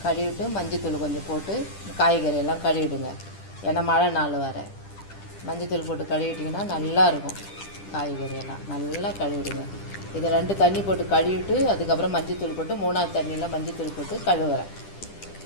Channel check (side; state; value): right; late; 10 ms